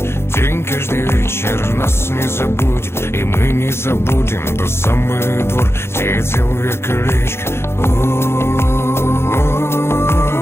День каждый вечер нас не забудет, и мы не забудем тот самый двор, где я делал я колечко.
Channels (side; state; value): right; late; 0.12 ms